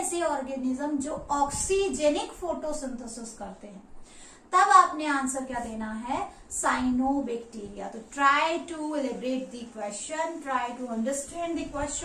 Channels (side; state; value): both; identical; correlation 1.00